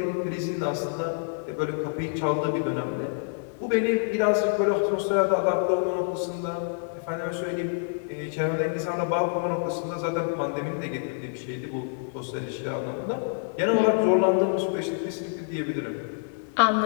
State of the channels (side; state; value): right; silent; digital silence